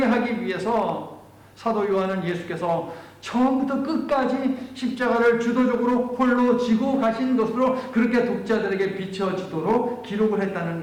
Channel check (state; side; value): identical; both; correlation 1.00